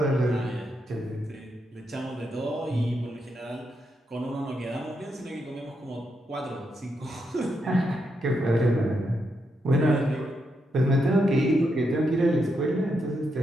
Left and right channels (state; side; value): normal; both; correlation 0.82